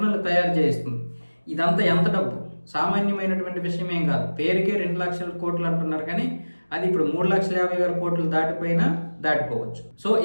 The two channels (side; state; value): both; inverted; correlation -1.00